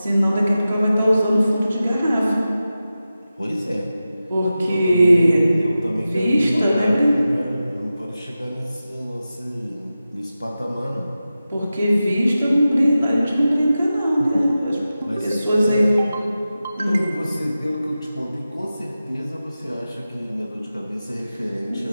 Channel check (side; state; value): both; inverted; correlation -0.93